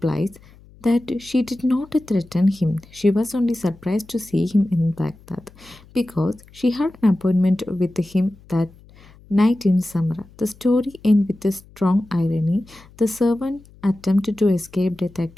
that she did not threaten him. She was only surprised to see him in Baghdad because she had an appointment with him that night in Samara. The story ends with a strong irony. The servant attempted to escape death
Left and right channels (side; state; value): left; noise; hum, 25 dB below the sound